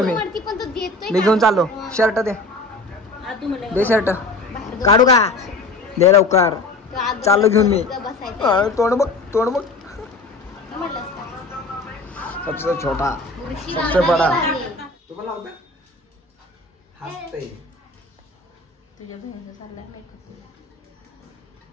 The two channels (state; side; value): quieter; right; 3.1 dB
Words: मी घेऊन चाललो। शर्ट दे, दे शर्ट काढू का? दे लवकर, चाललो घेऊन मी। तोंड बघ, तोंड बघ। सबसे छोटा सबसे बड़ा तुम्हाला होतं हसते तुझ्या बहिणीचं चाललंय मेकअप।